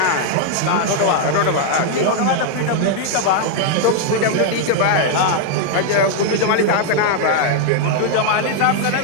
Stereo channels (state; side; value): different; both; correlation 0.00